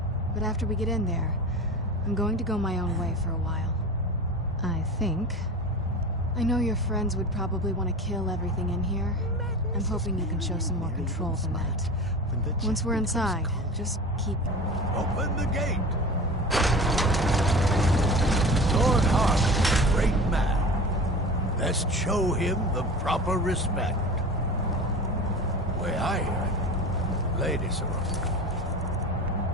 But after we get in there, I'm going to go my own way for a while. I think. I know your friends would probably want to kill everything in here. I'm hoping you can show some more control than that. Once we're inside, just keep... Open the gate! Dawnguard, great man. Let's show him the proper respect. Way I hear it, Lady Sarona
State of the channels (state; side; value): normal; both; correlation 0.34